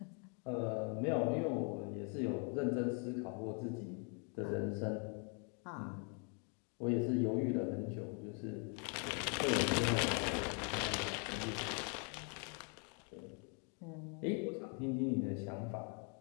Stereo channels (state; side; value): quieter; right; 38.6 dB